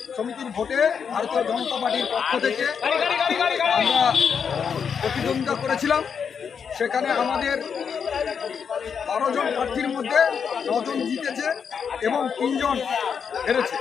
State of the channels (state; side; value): quieter; right; 6.7 dB